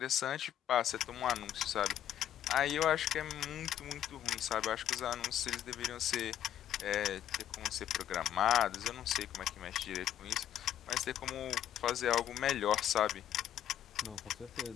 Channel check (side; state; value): right; quieter; 11.0 dB